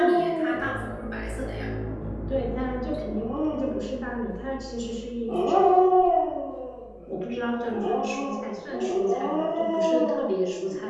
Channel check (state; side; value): identical; both; correlation 1.00